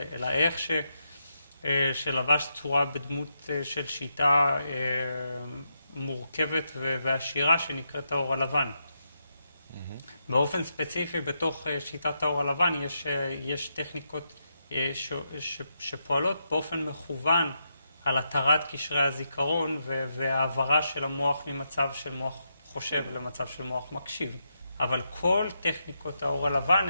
אלא איך שלבש צורה בדמות של שיטה מורכבת ועשירה שנקראת האור הלבן. באופן ספציפי, בתוך שיטת האור הלבן יש טכניקות שפועלות באופן מכוון על התרת קשרי הזיכרון והעברה של המוח ממצב של מוח חושב למצב של מוח מקשיב. אבל כל טכניקות האור הלבן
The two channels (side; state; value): both; inverted; correlation -0.83